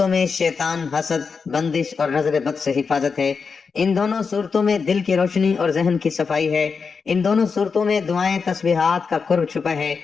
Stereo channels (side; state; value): right; quieter; 5.3 dB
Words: میں شیطان، حسد، بندش اور نظر بد سے حفاظت ہے، ان دونوں صورتوں میں دل کی روشنی اور ذہن کی صفائی ہے، ان دونوں صورتوں میں دعائیں، تسبیحات کا قرب چھپا ہے۔